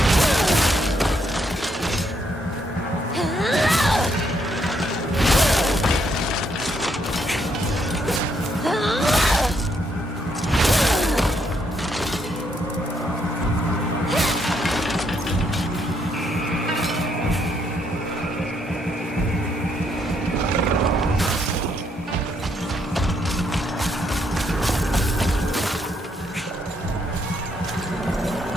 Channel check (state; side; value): normal; both; correlation 0.74